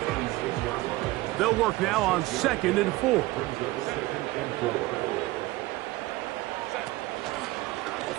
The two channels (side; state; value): left; quieter; 19.2 dB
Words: They'll work now on 2nd and 4.